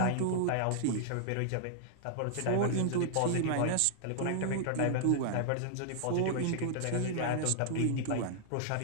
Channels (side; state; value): both; different; correlation -0.01